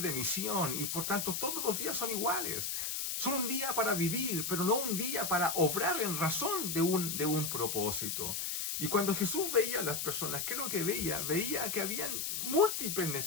misión y por tanto todos los días son iguales. Son un día para vivir, pero no un día para obrar en razón de un propósito. Y cuando Jesús veía a las personas, ¿qué es lo que veía? Veía que habían múltiples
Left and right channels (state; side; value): noise; left; hiss, 2 dB below the sound